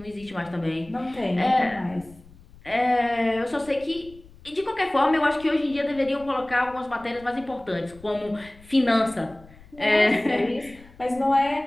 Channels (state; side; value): noise; left; rumble, 23 dB below the sound